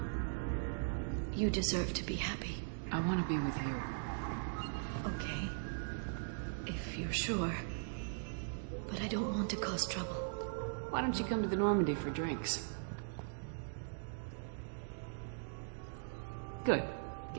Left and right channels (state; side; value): silent; left; digital silence